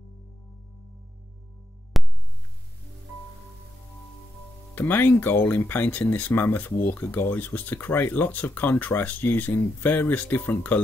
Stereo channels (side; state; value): both; normal; correlation 0.82